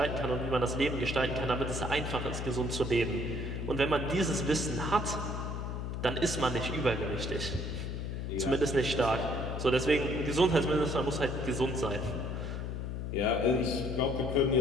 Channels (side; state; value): left; noise; hum, 4 dB below the sound